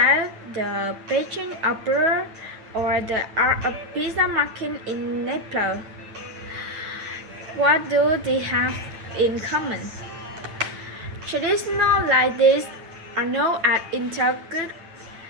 the Beijing Opera, or the art of pizza making in Naples? What do they have in common? Traditional like this are known as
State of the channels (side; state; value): left; late; 9.2 ms